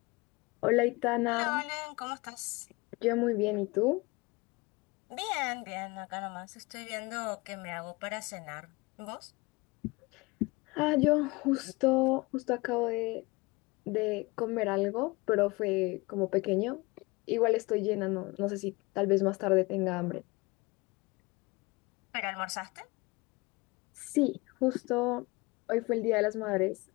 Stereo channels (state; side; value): quieter; right; 24.4 dB